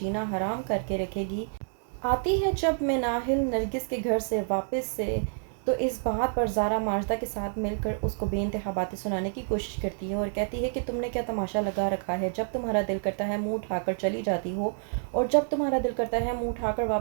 حرام کر کے رکھے گی، آتی ہے جب مناہل نرگس کے گھر سے واپس سے تو اس بات پر زارا ماجدہ کے ساتھ مل کر اس کو بے انتہا باتیں سنانے کی کوشش کرتی ہے اور کہتی ہے کہ تم نے کیا تماشا لگا رکھا ہے، جب تمہارا دل کرتا ہے منہ اٹھا کر چلی جاتی ہو اور جب تمہارا دل کرتا ہے منہ اٹھا کر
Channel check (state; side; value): silent; left; digital silence